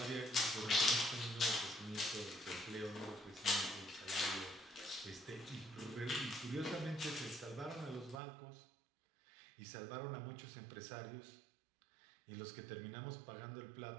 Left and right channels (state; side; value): drops out; left; at 8.2 s